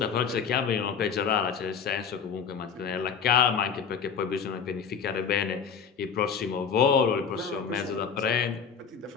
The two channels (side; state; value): right; quieter; 6.6 dB